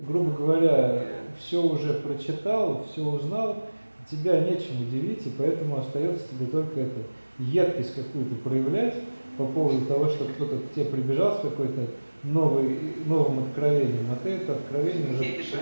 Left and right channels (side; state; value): both; inverted; correlation -1.00